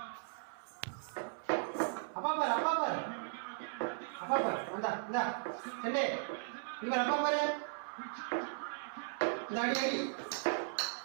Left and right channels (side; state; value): left; silent; 53 dB below the other